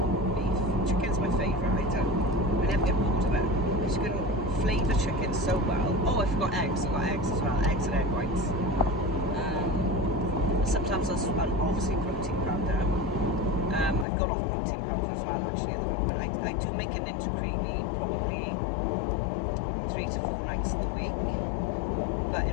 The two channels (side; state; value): right; drops out; at 14.1 s